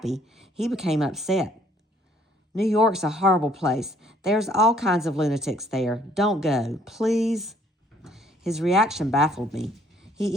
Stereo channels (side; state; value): both; normal; correlation 0.63